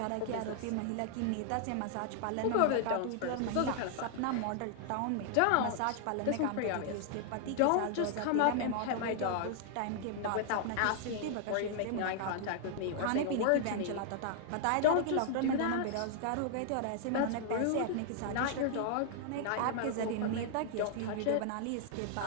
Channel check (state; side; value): different; both; correlation 0.00